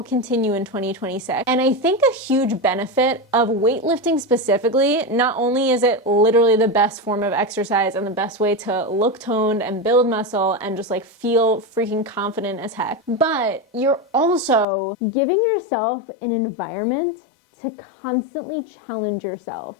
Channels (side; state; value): right; drops out; at 14.7 s